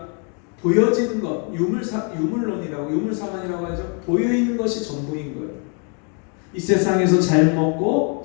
보여지는 것, 유물론이라고 하죠. 보여있는 것이 전부인 거예요. 이 세상에서 잘 먹고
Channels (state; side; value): quieter; right; 39.0 dB